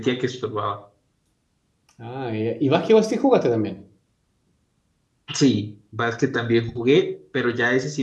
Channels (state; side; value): identical; both; correlation 1.00